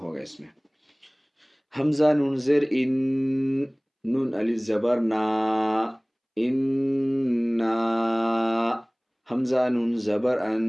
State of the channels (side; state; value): both; identical; correlation 1.00